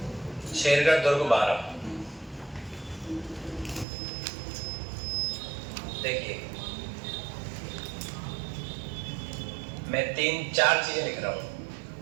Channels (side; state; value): left; drops out; at 3.9 s